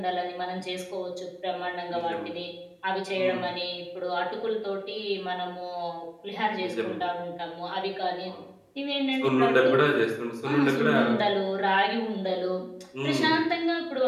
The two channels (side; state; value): both; identical; correlation 1.00